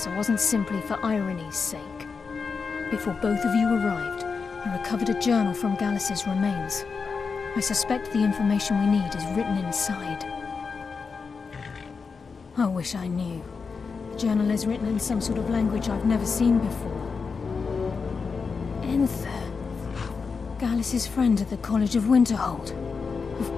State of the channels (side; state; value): right; quieter; 5.1 dB